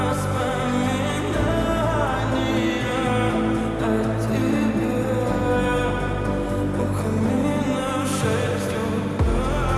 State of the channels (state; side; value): identical; both; correlation 1.00